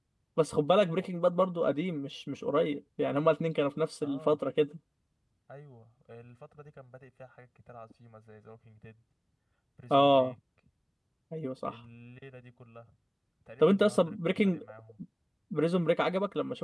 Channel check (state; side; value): identical; both; correlation 1.00